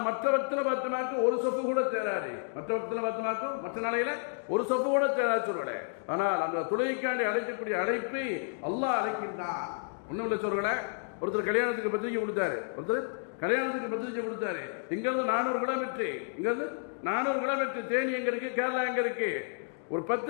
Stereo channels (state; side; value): silent; right; digital silence